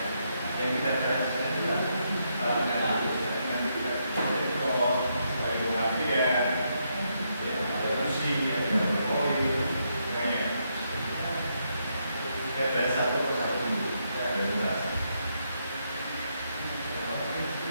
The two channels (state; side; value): inverted; both; correlation -0.79